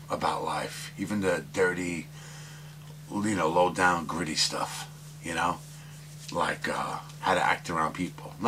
about life, even the dirty, low-down, gritty stuff, like how to act around people.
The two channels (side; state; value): both; identical; correlation 1.00